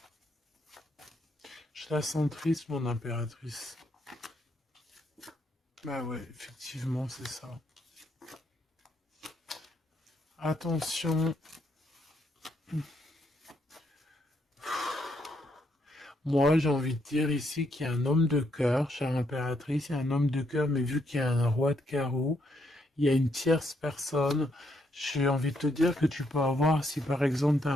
Je la sens triste, mon impératrice. Bah ouais, effectivement, c'est ça. Attention. Moi, j'ai envie de dire ici qu'il y a un homme de cœur, chère impératrice, il y a un homme de cœur, mais vu qu'il y a un roi de carreau, il y a une tierce personne. J'ai envie de te dire que tu peux avoir, si par exemple tu as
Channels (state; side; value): normal; both; correlation 0.75